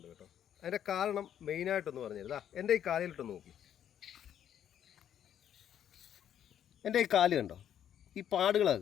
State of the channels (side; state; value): right; quieter; 9.9 dB